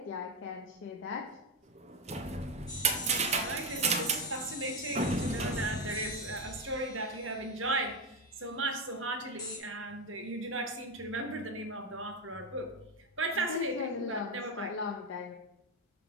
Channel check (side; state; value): both; normal; correlation 0.09